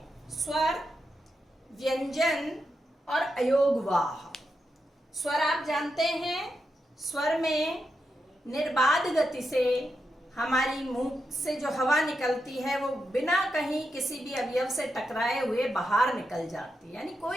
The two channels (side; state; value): both; normal; correlation 0.86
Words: स्वर, व्यंजन और अयोगवाह। स्वर आप जानते हैं, स्वर में निर्बाध गति से हमारी मुंह से जो हवा निकलती है वो बिना कहीं किसी भी अवयव से टकराए हुए बाहर निकल जाती है, यानी